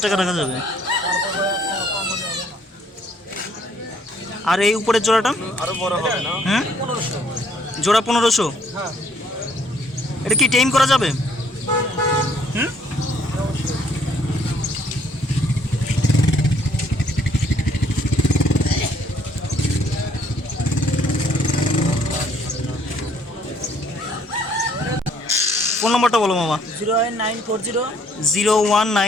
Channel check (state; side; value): normal; both; correlation 0.64